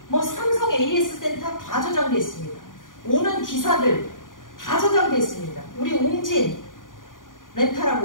뭐 삼성 AS 센터 다 저장되어 있습니다. 오는 기사들 다 저장되어 있습니다. 우리 웅진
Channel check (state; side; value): late; right; 0.89 ms